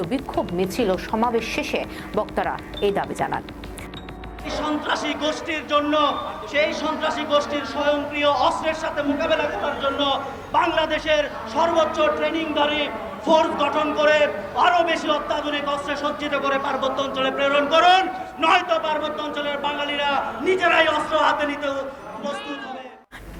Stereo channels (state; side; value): identical; both; correlation 1.00